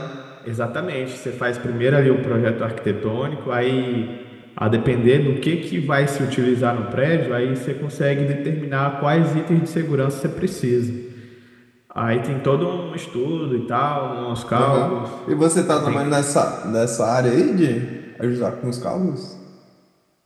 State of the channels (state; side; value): identical; both; correlation 1.00